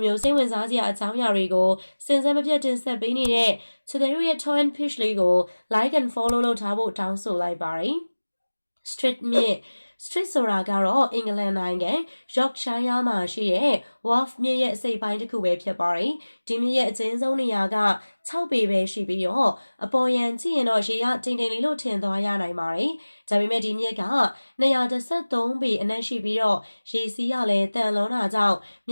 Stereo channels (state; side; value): inverted; both; correlation -1.00